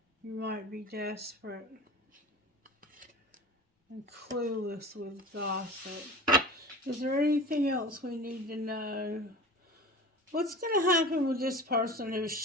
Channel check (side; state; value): both; normal; correlation 0.36